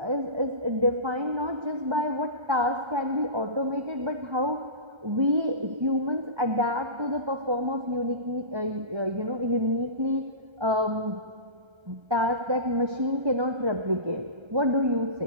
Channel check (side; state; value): left; late; 1.3 ms